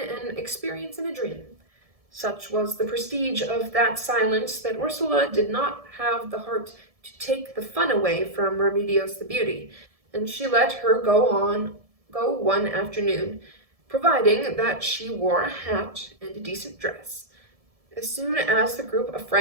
experience in a dream. Such was the prestige of that silence that Ursula did not have the heart to take the fun away from Remedios the Beauty, and she let her go one afternoon, providing that she wore a hat and a decent dress. As soon as the group of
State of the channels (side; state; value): left; late; 1.7 ms